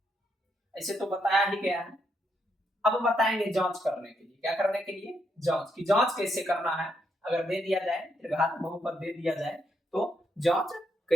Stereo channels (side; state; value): both; normal; correlation 0.77